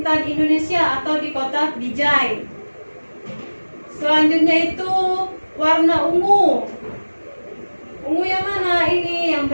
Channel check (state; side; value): inverted; both; correlation -1.00